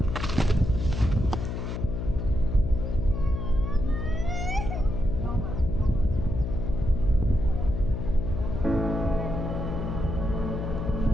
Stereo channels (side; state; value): left; noise; hum, 3 dB below the sound